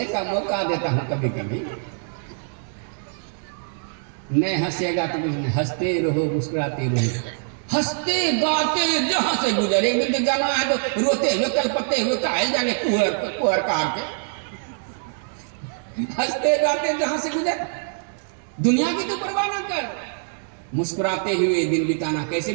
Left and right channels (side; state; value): left; silent; digital silence